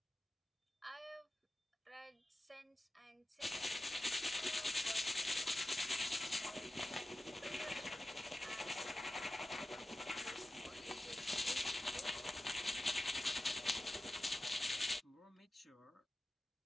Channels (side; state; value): both; normal; correlation 0.93